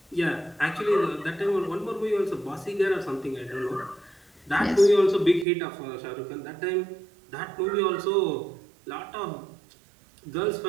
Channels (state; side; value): drops out; left; at 5.5 s